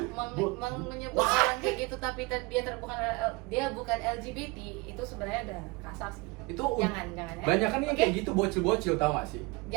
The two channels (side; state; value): left; quieter; 25.4 dB